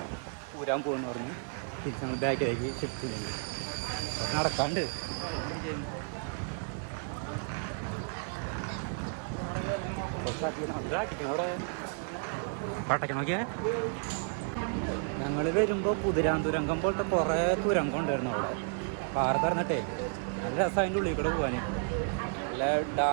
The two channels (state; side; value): silent; left; 56 dB below the other